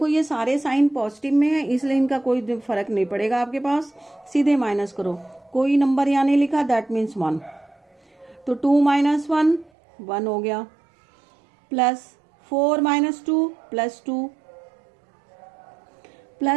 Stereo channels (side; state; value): left; drops out; at 9.7 s